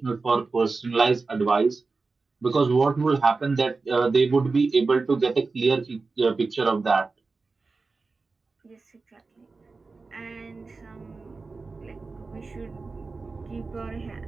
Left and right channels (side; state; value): left; quieter; 4.0 dB